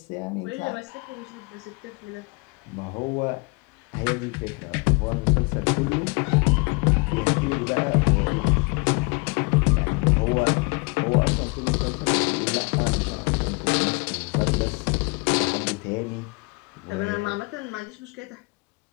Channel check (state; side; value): quieter; right; 29.7 dB